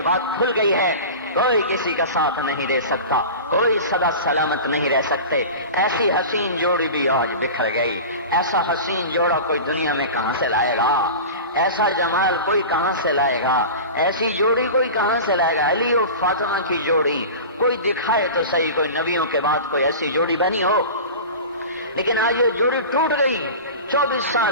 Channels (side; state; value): both; inverted; correlation -0.32